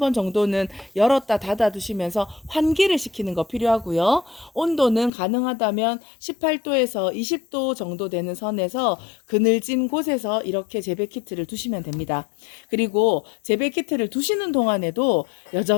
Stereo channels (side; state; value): right; drops out; at 5.1 s